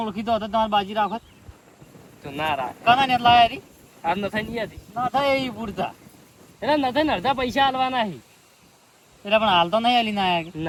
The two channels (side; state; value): both; identical; correlation 1.00